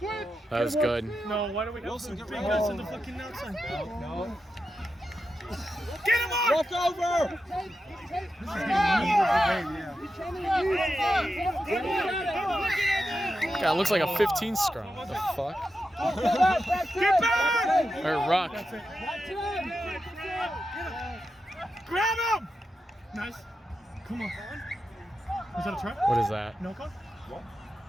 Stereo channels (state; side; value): normal; both; correlation 0.89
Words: That was good. No, why do we have Wilson, to get bring rid us of in the fucking outside? No. Get him on! Walk over! God, it looks like a 15 scrum. What the fuck? Get back! Or ruck. Grab him! Nice. Come on. Is that a try? What is that? No call?